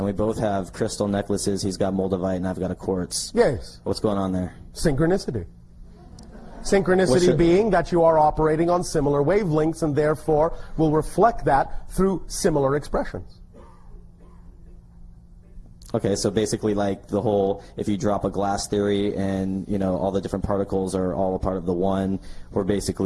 we both have crystal necklaces. He's got moldavite, and I've got a quartz. Yes. What's going on there? Synchronicity. Synchronicity being that you are operating on similar wavelengths, and therefore will reflect that through similar expressions. Okay, so basically like the whole, if you drop a glass theory and, all the different particles are all a part of the one, we're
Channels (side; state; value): both; identical; correlation 1.00